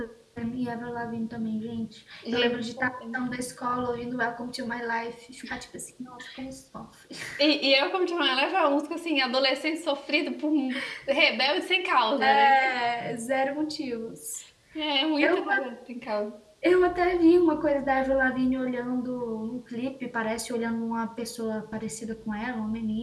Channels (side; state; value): both; identical; correlation 1.00